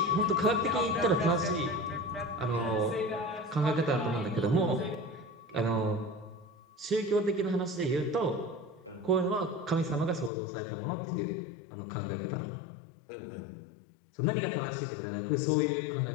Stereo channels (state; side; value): drops out; right; at 10.3 s